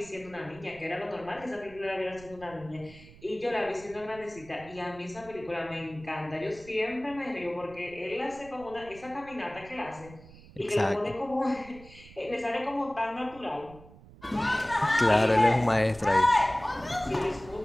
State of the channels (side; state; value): right; noise; rumble, 20 dB below the sound